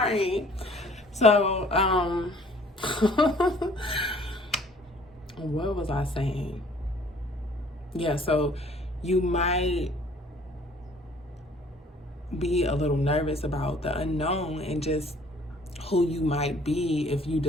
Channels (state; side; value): normal; both; correlation 0.56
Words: So, what was I saying? Yeah, so you might be a little nervous about the unknown and just who you might be if you